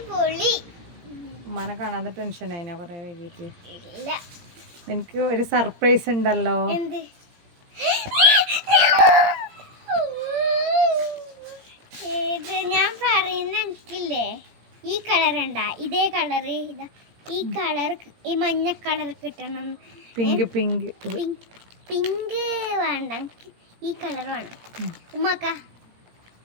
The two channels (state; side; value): late; left; 17 ms